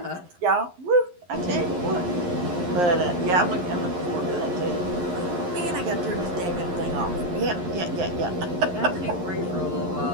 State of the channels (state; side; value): late; left; 11 ms